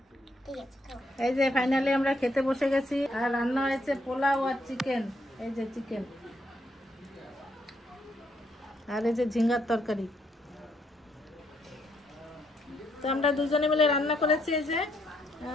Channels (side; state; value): both; normal; correlation 0.74